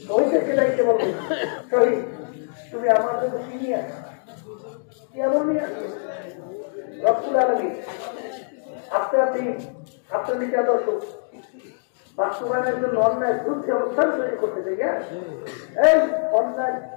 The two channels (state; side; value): silent; right; digital silence